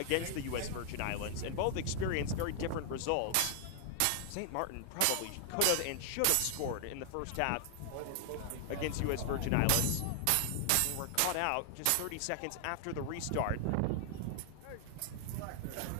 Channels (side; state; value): both; different; correlation 0.00